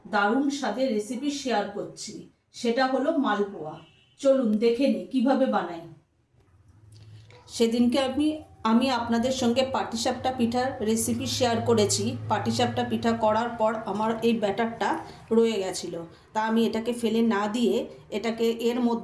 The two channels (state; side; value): identical; both; correlation 1.00